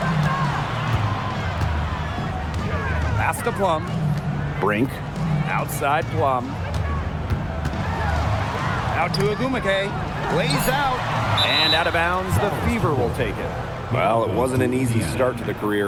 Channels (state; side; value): identical; both; correlation 1.00